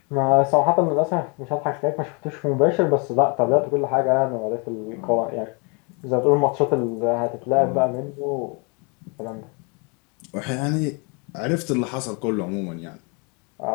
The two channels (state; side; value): quieter; right; 33.4 dB